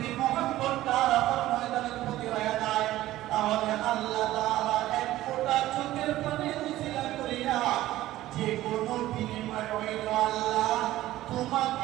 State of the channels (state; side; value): quieter; left; 15.3 dB